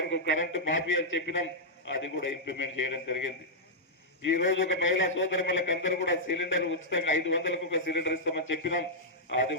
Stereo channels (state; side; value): normal; both; correlation -0.08